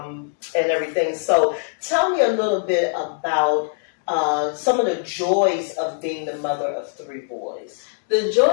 everything. So tell me a little bit about some of the joys of being the mother of 3 boys. The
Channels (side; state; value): right; silent; digital silence